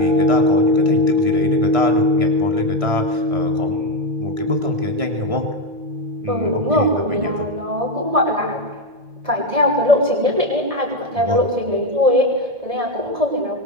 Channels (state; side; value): late; left; 1.6 ms